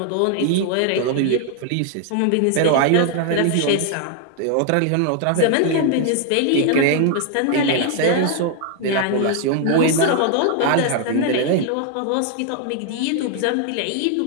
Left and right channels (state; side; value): different; both; correlation 0.00